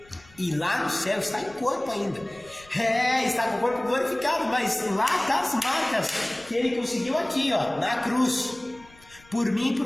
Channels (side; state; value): left; noise; rumble, 26 dB below the sound